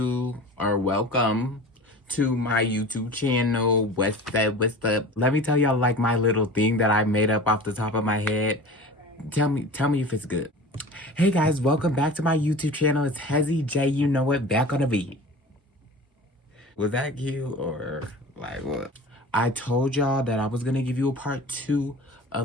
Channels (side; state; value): both; normal; correlation 0.37